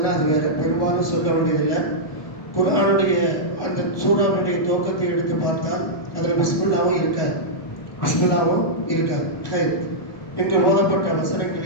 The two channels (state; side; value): late; right; 1.2 ms